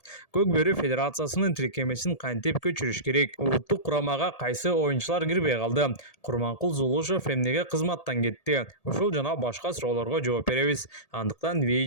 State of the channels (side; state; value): right; late; 1.8 ms